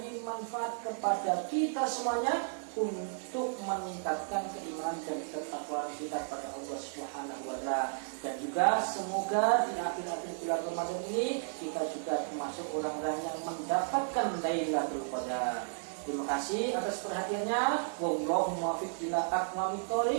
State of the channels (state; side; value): silent; left; digital silence